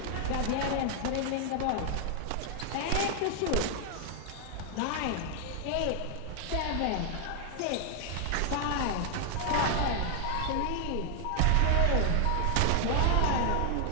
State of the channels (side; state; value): both; different; correlation 0.00